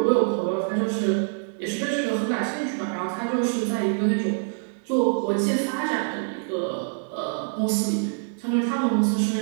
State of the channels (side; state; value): left; silent; digital silence